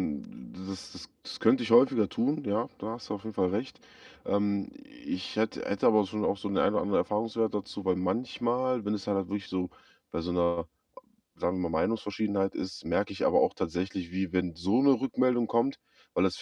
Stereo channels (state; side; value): identical; both; correlation 1.00